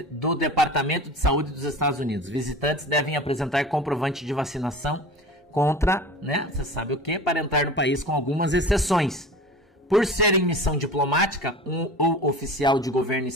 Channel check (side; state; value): both; normal; correlation 0.36